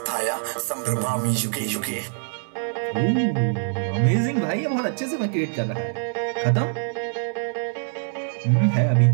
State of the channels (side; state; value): left; silent; digital silence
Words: संभ्रमामि युगे युगे। अमेजिंग भाई, ये बहुत अच्छे से मैं क्रिएट कर रहा है। खत्म है अभी,